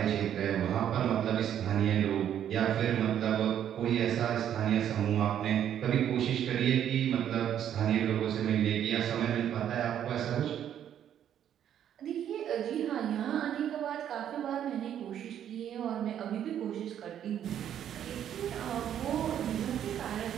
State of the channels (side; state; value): left; quieter; 10.0 dB